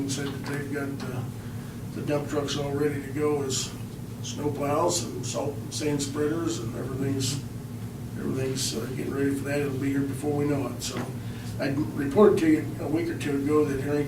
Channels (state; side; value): identical; both; correlation 1.00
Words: said that they've got the dump trucks all ready to go as snow plows and salt and sand spreaders, and everything's getting ready for that. It'll be here before we know it. So I reported to you a week or two ago that